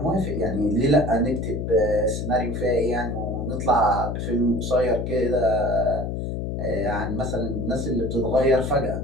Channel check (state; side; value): noise; left; hum, 3 dB below the sound